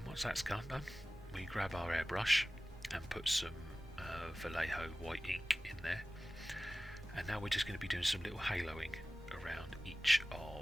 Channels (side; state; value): both; normal; correlation 0.97